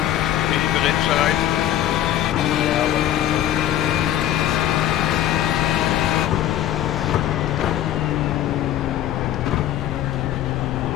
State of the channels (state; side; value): quieter; right; 12.2 dB